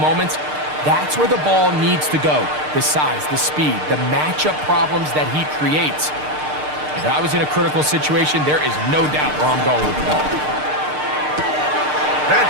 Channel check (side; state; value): left; late; 6.6 ms